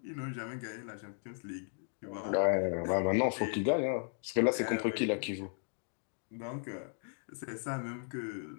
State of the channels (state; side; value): silent; right; 54 dB below the other